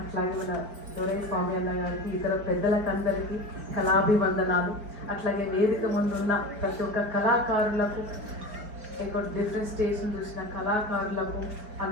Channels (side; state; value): left; late; 4.6 ms